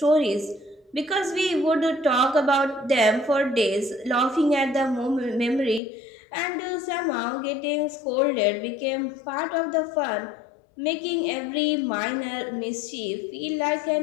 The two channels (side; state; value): right; drops out; at 5.8 s